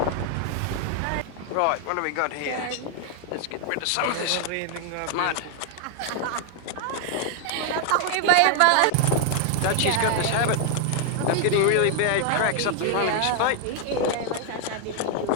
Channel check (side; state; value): both; different; correlation 0.00